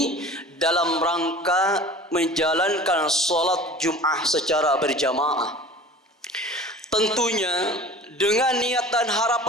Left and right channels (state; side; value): normal; both; correlation 0.42